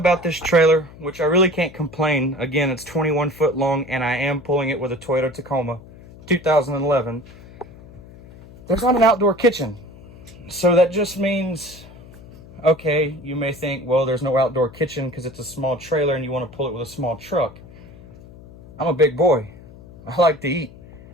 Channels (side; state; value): left; noise; hum, 20 dB below the sound